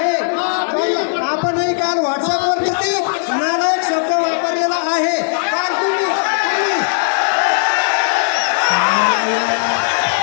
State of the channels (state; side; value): silent; right; 56 dB below the other